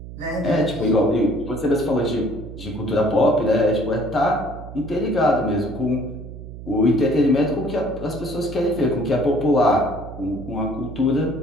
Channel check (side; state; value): right; noise; hum, 12 dB below the sound